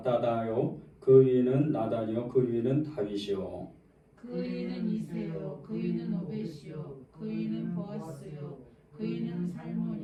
그 위는 나단이요 그 위는 다윗이요 그 위는 이세요 그 위는 오벳이요 그 위는 보아스요 그 위는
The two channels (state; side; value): identical; both; correlation 1.00